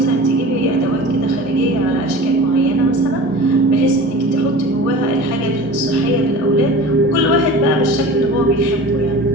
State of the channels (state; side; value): normal; both; correlation 0.38